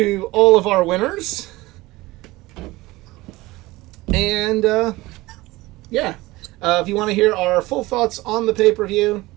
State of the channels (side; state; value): left; quieter; 19.9 dB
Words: all of our winners. And, yeah. If you want to hear our full thoughts on the pay-per-view,